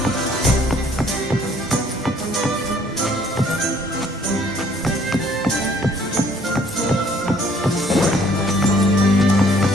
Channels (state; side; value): normal; both; correlation 0.60